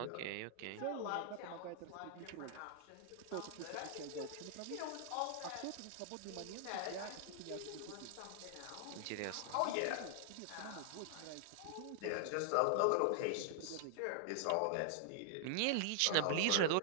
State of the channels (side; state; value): both; different; correlation -0.01